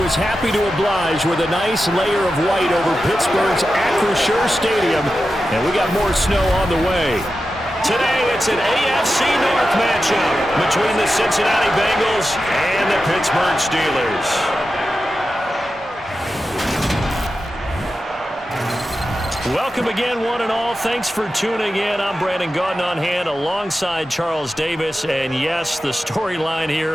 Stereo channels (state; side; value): normal; both; correlation 0.91